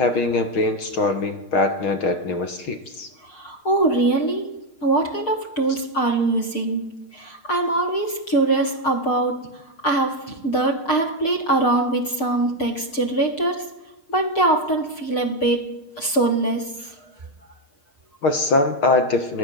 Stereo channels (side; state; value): right; late; 6.5 ms